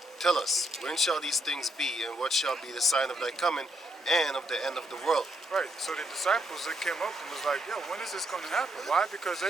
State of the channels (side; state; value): both; normal; correlation 0.75